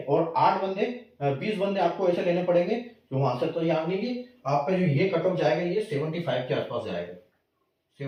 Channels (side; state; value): both; identical; correlation 1.00